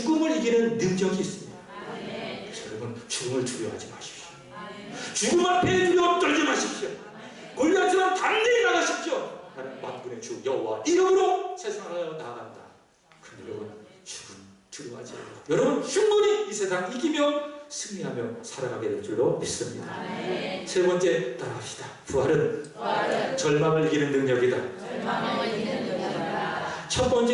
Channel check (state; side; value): identical; both; correlation 1.00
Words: 이기는 능력이 있습니다. 그래서 여러분 죽음을 두려워하지 마십시오. 죽음 앞에 두려워 떨지 마십시오. 골리앗처럼 담대히 나가십시오. 나는 만군의 주 여호와 이름으로 세상을 나아간다. 그런데 여러분 죽음 두려워하지 마세요. 여러분 충분히 이 세상 이기며 승리하며 살아가게 될 줄로 믿습니다. 세 번째 따라합시다. 부활은 절망을 이기는 능력이다. 첫